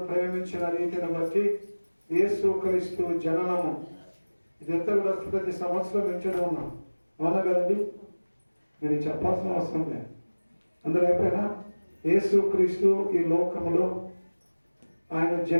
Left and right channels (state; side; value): inverted; both; correlation -1.00